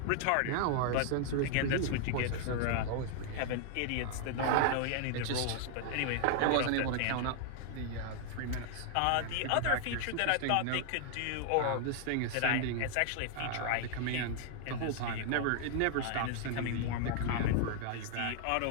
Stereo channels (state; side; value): different; both; correlation -0.01